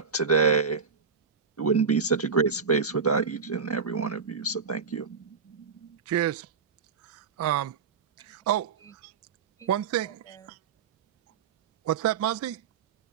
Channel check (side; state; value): left; quieter; 5.9 dB